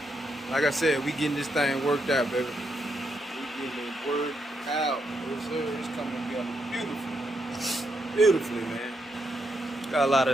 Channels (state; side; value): normal; both; correlation 0.80